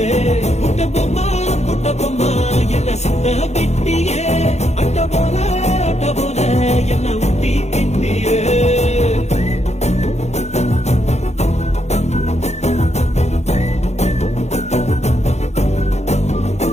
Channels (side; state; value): right; late; 0.32 ms